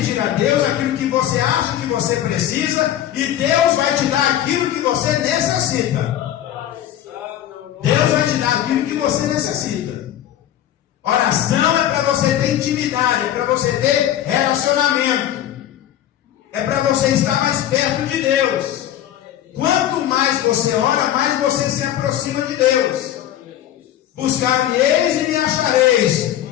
a Deus aquilo que você acha que você precisa, e Deus vai te dar aquilo que você necessita. Deus vai te dar aquilo que você necessita. Oração é para você ter intimidade, é para você ter relacionamento, é para você estar mais perto de Deus. Quanto mais você ora, mais você se aproxima de Deus. Buscar-me-eis e me achareis,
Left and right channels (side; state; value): right; quieter; 11.7 dB